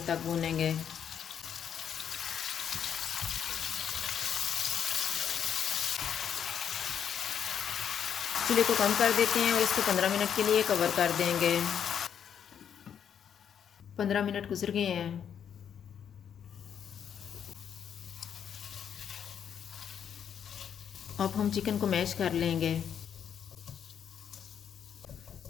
तक भूनेंगे। चूल्हे को कम कर देते हैं और इसको 15 मिनट के लिए कवर कर देंगे। 15 मिनट गुजर गए हैं। अब हम चिकन को मैश कर लेंगे।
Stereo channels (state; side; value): quieter; right; 8.4 dB